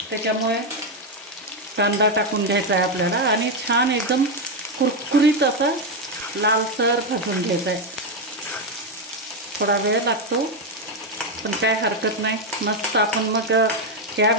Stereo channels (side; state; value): both; normal; correlation 0.06